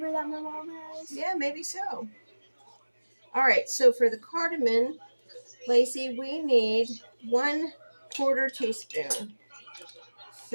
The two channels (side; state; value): both; inverted; correlation -1.00